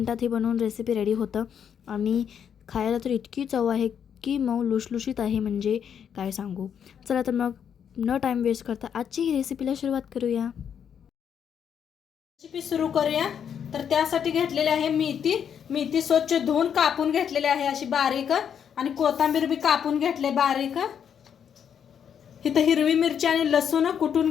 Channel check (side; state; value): right; quieter; 8.1 dB